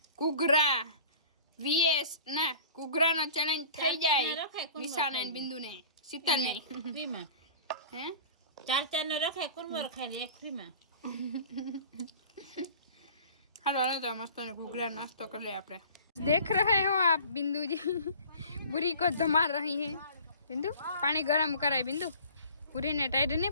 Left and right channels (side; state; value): both; inverted; correlation -0.44